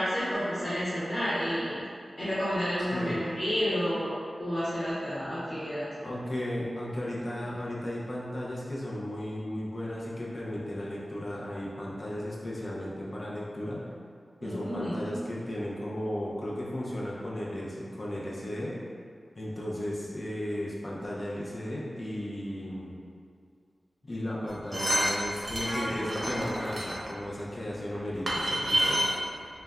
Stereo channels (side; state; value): both; normal; correlation 0.95